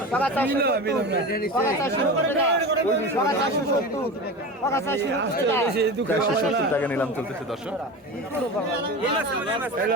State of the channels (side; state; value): both; normal; correlation 0.28